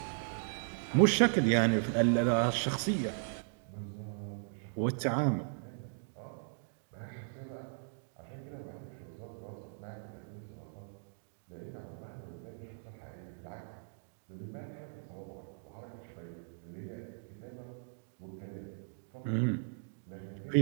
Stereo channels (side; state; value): left; silent; digital silence